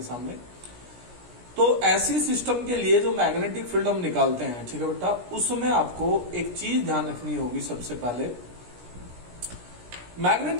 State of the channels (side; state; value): left; late; 17 ms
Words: सामने। तो ऐसी सिस्टम के लिए जो मैग्नेटिक फील्ड हम निकालते हैं, ठीक है बेटा, उसमें आपको एक चीज ध्यान रखनी होगी। सबसे पहले